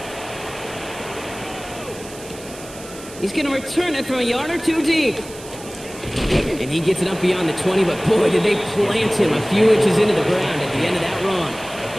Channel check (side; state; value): right; noise; hiss, 17 dB below the sound